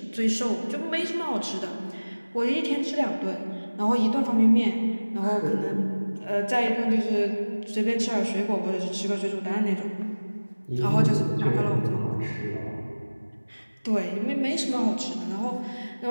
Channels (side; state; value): both; inverted; correlation -1.00